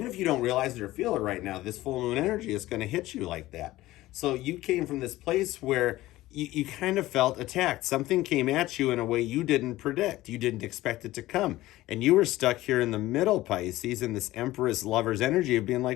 if you don't realize it or feel it right now. This full moon energy is going to hit you like that. So you came from this place where you kind of felt attacked. Something came at you in a way you didn't predict. You didn't expect it to come. And you were stuck here in the middle, Pisces, in this Empress Lover's energy of being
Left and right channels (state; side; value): quieter; right; 16.9 dB